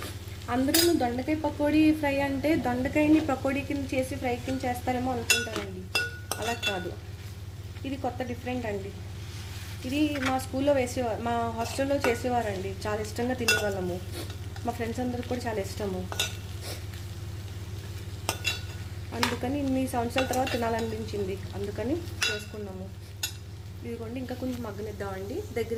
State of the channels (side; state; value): both; identical; correlation 1.00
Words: అందరూ దొండకాయ పకోడీ ఫ్రై అంటే దొండకాయని పకోడీ కింద చేసి ఫ్రై కింద చేస్తారేమో అనుకుంటారండి. అలా కాదు, ఇది కొత్త డిఫరెంట్ అండి. ఇది మా స్కూల్లో వేసేవారు, మా హాస్టల్లో చేసేవారండి. చాలా ఇష్టంగా తినేవాళ్ళము. మా ఫ్రెండ్స్ అందరికి కూడా చాలా ఇష్టము. అందుకని ఇన్ని సంవత్సరాల తర్వాత తినాలనిపించింది, అందుకని చేసుకున్నాము. ఇదిగోండి ఇంకా కొంచెం మగ్గనిద్దామండి.